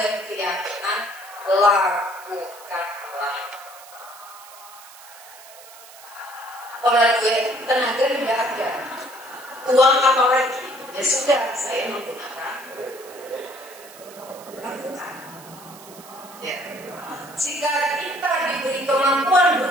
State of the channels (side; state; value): right; noise; hiss, 19 dB below the sound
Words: keyakinan lakukanlah. Orang gue tenaga tidak ada, uang apa lagi? Ya sudah, saya menggunakan lakukan. Ya. Jika kita diberi kemampuan